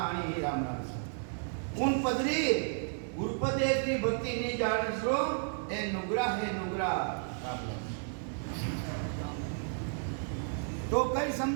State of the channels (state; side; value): silent; left; 56 dB below the other